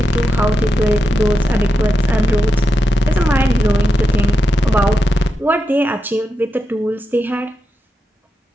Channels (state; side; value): normal; both; correlation 0.87